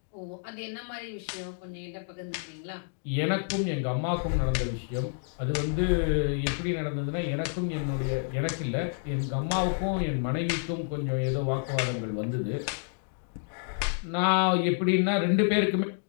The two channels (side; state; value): right; silent; digital silence